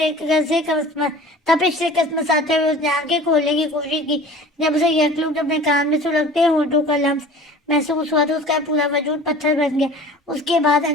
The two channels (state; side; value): normal; both; correlation 0.43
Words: तपिश से कसमसाते हुए उसने आंखें खोलने की कोशिश की। जब उसे यकलुक अपने कान में सुलगते होठों का लम्स महसूस हुआ तो उसका पूरा वजूद पत्थर बन गया। उसके बाद